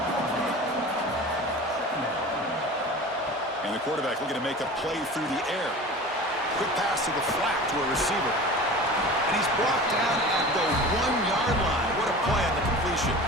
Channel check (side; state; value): both; normal; correlation 0.37